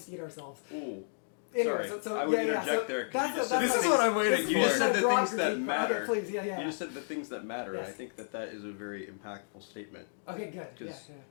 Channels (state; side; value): silent; right; digital silence